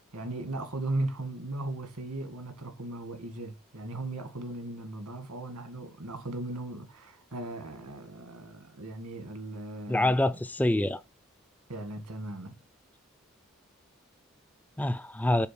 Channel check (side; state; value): both; normal; correlation 0.82